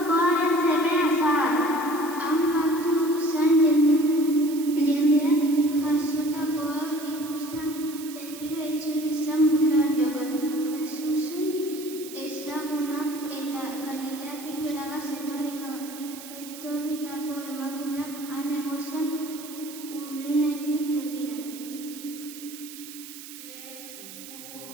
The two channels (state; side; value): noise; right; hiss, 14 dB below the sound